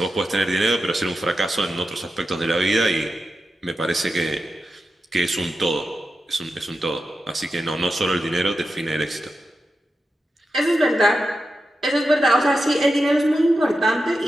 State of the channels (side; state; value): both; normal; correlation 0.90